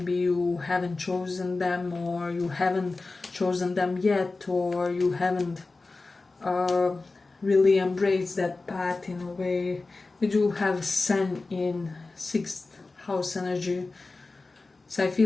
you haven't chosen them, or you haven't chosen them yet, or you haven't really embraced that path in a way. We do have Sun in 6th house energy. So I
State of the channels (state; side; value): quieter; right; 3.6 dB